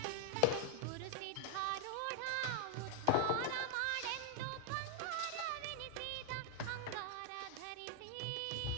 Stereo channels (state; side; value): different; both; correlation 0.00